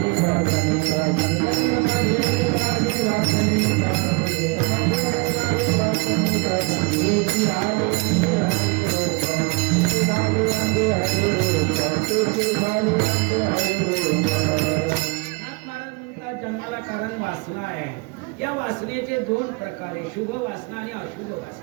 जन्माला कारण वासना आहे। या वासनेचे दोन प्रकार आहे, शुभ वासना आणि अशुभ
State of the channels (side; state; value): left; quieter; 29.1 dB